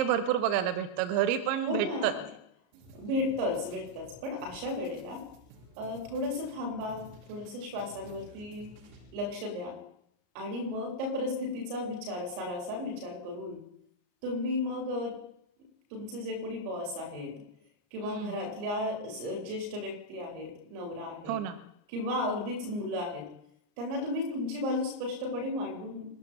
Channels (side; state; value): left; late; 34 ms